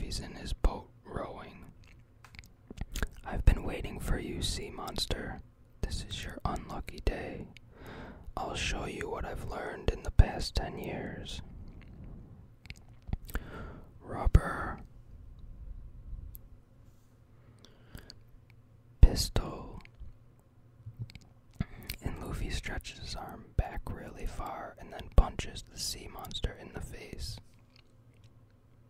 in his boat rowing. I've been waiting for you, sea monster. This is your unlucky day. I'll show you what I've learned in the past 10 years. Rubber. Pistol. And Luffy stretches his arm back really far and then punches the sea monster in the face.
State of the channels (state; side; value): identical; both; correlation 1.00